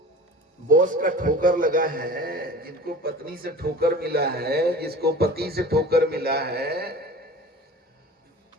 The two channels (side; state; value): both; normal; correlation 0.40